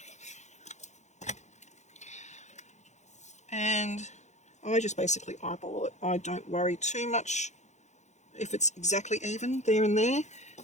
And I just basically eyeball it. I don't worry too much if it's exactly even there and there.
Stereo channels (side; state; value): right; late; 0.34 ms